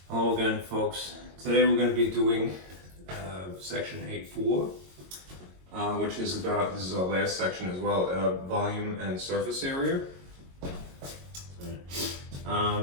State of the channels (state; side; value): late; left; 22 ms